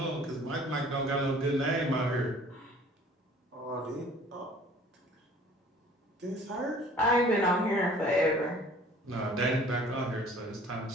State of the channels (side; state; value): both; normal; correlation 0.51